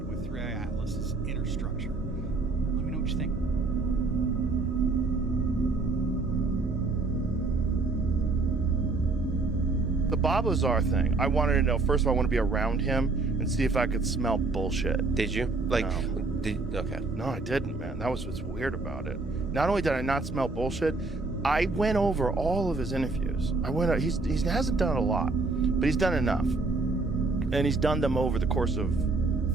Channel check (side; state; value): left; quieter; 3.6 dB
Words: with 3i Atlas's inner structure? Let me know what you think. The Bob Lazar thing, I wanted to know, first of all, I want to be around him and see if I could smell bullshit. Did you? Okay. No, I didn't, man. That was what's weird about it. Not only did I not smell bullshit, I went over all of his interviews. He hasn't done a lot, but he's done enough. And he's done them over the course of